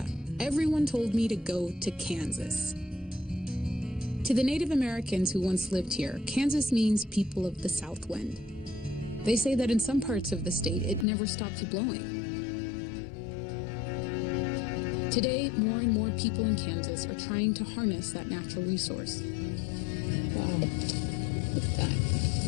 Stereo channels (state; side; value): drops out; right; at 11.1 s